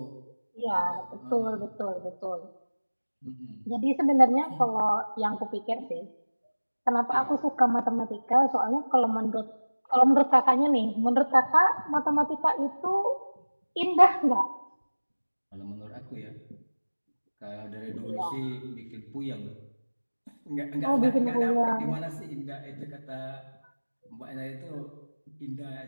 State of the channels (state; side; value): inverted; both; correlation -1.00